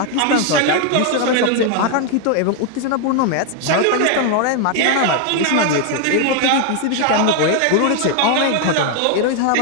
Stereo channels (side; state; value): both; different; correlation 0.01